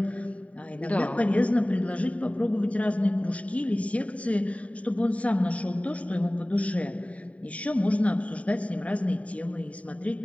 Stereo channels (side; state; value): right; late; 0.067 ms